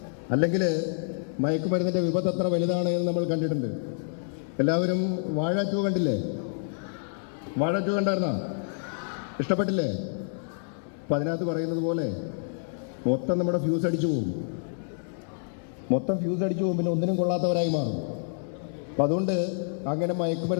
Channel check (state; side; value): silent; right; digital silence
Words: അല്ലെങ്കിൽ മയക്കുമരുന്നിൻ്റെ വിപത്ത് എത്ര വലുതാണ് എന്ന് നമ്മൾ കണ്ടിട്ടുണ്ട്. എല്ലാവരും വാഴ 2 കണ്ടില്ലേ? വാഴ 2 കണ്ടായിരുന്നോ? ഇഷ്ടപ്പെട്ടില്ലേ? അപ്പം അതിനകത്ത് പറയുന്നത് പോലെ മൊത്തം നമ്മുടെ ഫ്യൂസ് അടിച്ചു പോകും. പിന്നെ ഒന്നിനും കൊള്ളാത്തവരായി മാറും. അപ്പം അതുകൊണ്ട് അങ്ങനെ